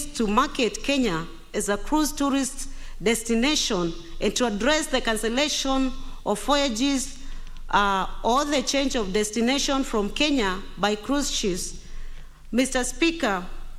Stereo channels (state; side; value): identical; both; correlation 1.00